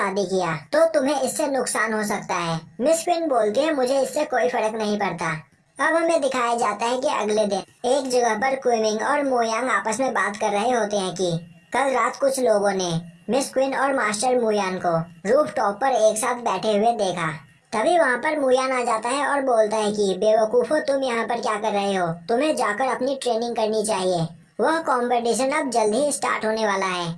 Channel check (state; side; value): identical; both; correlation 1.00